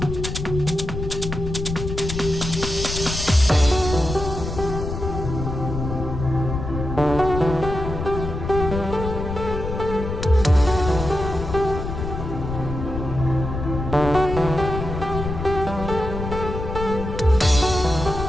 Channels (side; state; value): left; noise; rumble, 5 dB below the sound